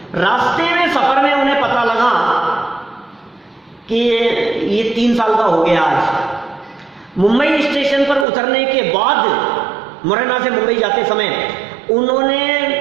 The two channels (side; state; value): left; drops out; at 8.2 s